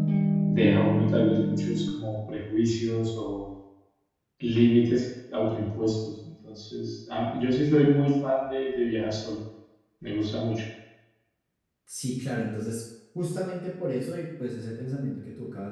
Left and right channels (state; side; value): identical; both; correlation 1.00